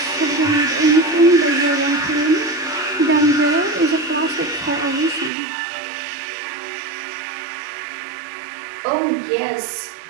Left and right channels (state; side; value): drops out; left; at 5.3 s